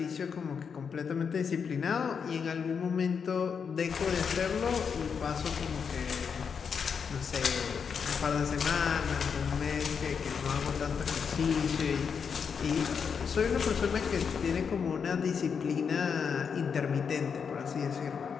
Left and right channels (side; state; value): right; quieter; 6.4 dB